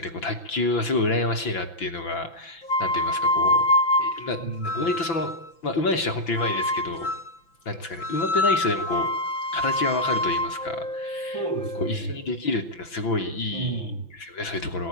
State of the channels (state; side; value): late; right; 5.9 ms